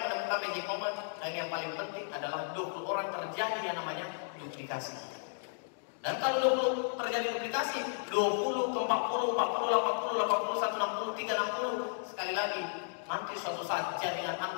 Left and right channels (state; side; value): silent; right; digital silence